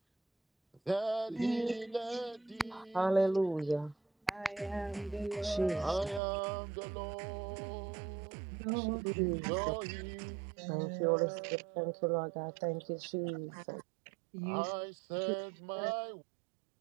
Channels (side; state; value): left; drops out; at 6.2 s